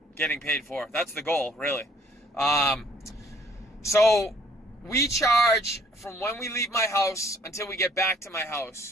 getting paid for. That's the goal, really. So we charge from when we leave my house until we get back to my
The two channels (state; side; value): normal; both; correlation 0.60